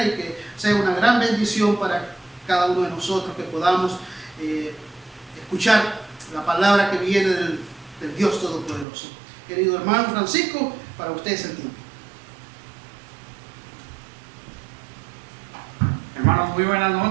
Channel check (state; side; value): drops out; left; at 8.8 s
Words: y que sea una gran bendición para cada uno de nosotros, que podamos escuchar la palabra que viene del Dios Todopoderoso. Querido hermano Francisco, para usted es el tiempo. Hermanos, muy buenas